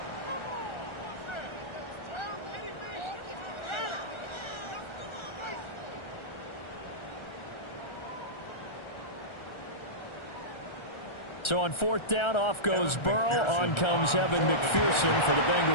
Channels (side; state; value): right; late; 1.3 ms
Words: So on 4th down, off goes Burrow. On comes Evan McPherson for the